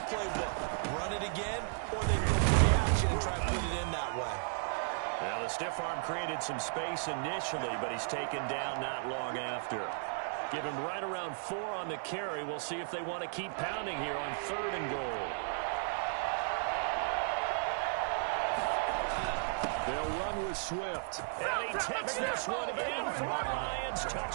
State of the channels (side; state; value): left; silent; digital silence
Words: playbook. Run it again, or they can go play action and try to put it in that way. Now, the stiff arm created some space initially, but he's taken down not long after. Give him right around 4 on the carry. We'll see if they want to keep pounding here on 3rd and goal. They'll run with Swift. And he takes this one in for a Lions